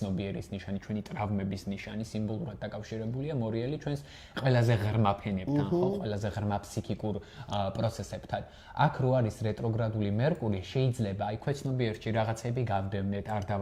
ნიშანი, ჩვენი ტრავმების ნიშანი, სიმბოლურად დაკავშირებულია მორიელი ჩვენს ყველაზე ღრმა ფენებთან, ხო, ყველაზე ღრმა ფსიქიკურ პროცესებთან. აქ რო არის რეტროგრადული მერკური, შეიძლება აი ქვეცნობიერში რაღაცები გავდევნეთ, არ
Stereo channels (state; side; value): identical; both; correlation 1.00